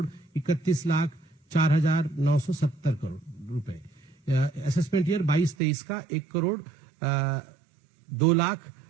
31,04,970 करोड़ रुपए। असेसमेंट ईयर 22-23 का 1 करोड़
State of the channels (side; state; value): left; drops out; at 5.6 s